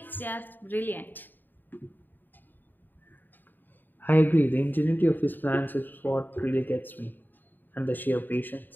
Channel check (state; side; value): late; right; 0.091 ms